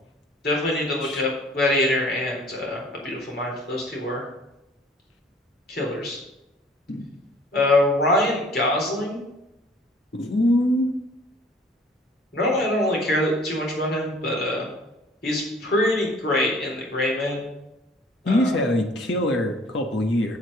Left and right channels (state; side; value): normal; both; correlation 0.53